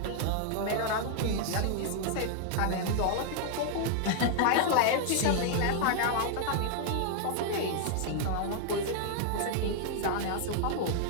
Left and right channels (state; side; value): different; both; correlation 0.00